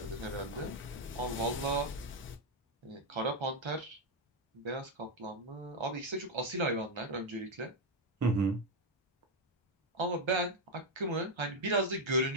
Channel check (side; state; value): both; normal; correlation 0.03